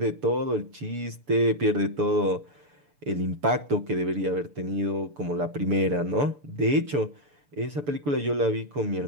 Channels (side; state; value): left; late; 6.9 ms